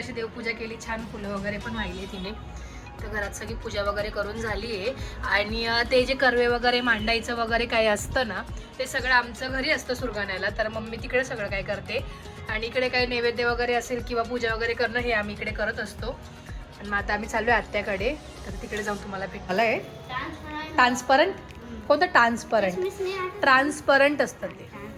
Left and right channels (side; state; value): both; identical; correlation 1.00